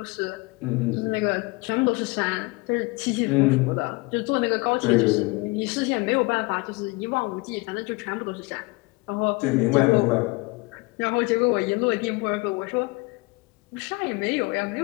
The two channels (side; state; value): right; quieter; 25.7 dB